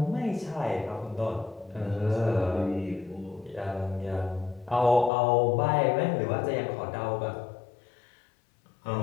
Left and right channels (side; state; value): right; drops out; at 5.1 s